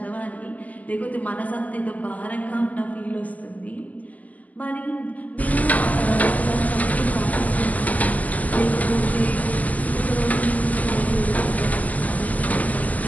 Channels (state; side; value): late; right; 0.072 ms